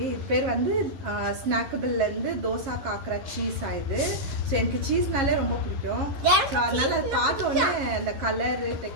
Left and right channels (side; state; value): left; late; 11 ms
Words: இது பேர் வந்து ஸ்நாக்கபிள்லேருந்து தோசா காக்கரா சீஸ் ஆகுது. ஸோ எனக்கு சீஸ்னாலே ரொம்ப பிடிக்கும். ஸோ அதனால் அது பார்த்தோன்னே அந்த கலரு